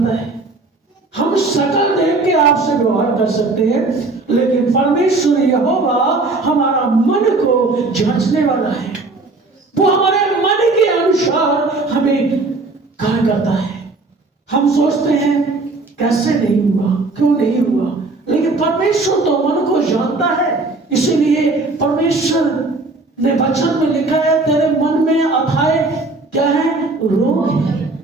है। हम शकल देख के आपसे व्यवहार कर सकते हैं, लेकिन परमेश्वर यहोवा हमारा मन को जांचने वाला है। वो हमारे मन के अनुसार हमें कार्य करता है। हम सोचते हैं कैसे नहीं हुआ, क्यों नहीं हुआ, लेकिन परमेश्वर तो मन को जानता है। इसीलिए परमेश्वर ने वचन में लिखा है, तेरे मन में अथाए क्या है? रोग है।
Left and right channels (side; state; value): left; quieter; 3.4 dB